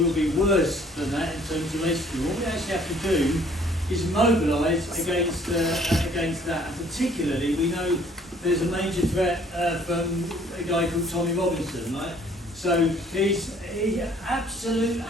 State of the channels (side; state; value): both; normal; correlation 0.58